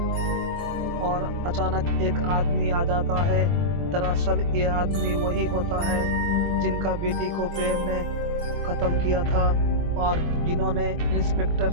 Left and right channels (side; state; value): left; late; 24 ms